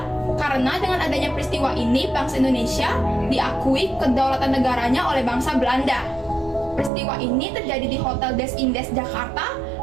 karena dengan adanya peristiwa ini bangsa Indonesia diakui kedaulatan negaranya oleh bangsa Belanda. Peristiwa ini terjadi di Hotel Des Indes Jakarta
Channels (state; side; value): drops out; left; at 6.9 s